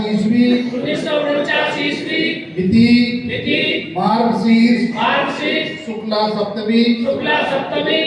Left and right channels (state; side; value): identical; both; correlation 1.00